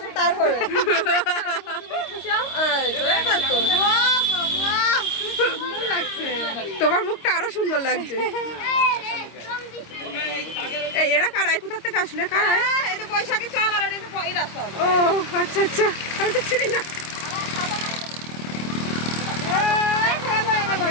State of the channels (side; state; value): right; late; 26 ms